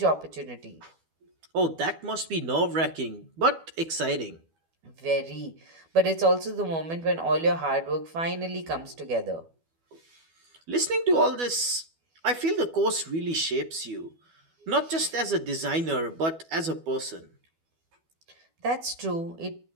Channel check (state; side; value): late; left; 12 ms